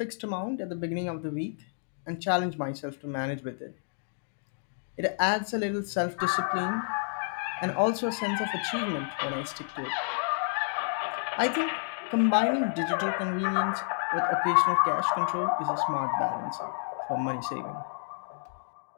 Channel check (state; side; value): silent; right; digital silence